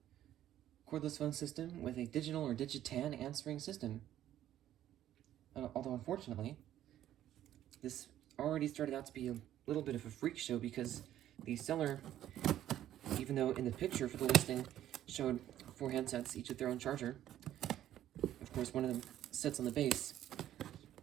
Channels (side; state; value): left; quieter; 12.2 dB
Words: cordless phone system with a digital or digitan answering system. Although unfortunately, this already started out to be a little bit of a freak show because the seller, even though in the picture for the listing showed 4 handsets, each with their own charger, of course one of them sits on the base,